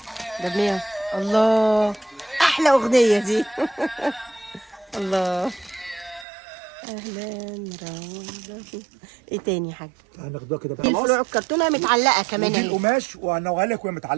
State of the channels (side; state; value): left; drops out; at 6.2 s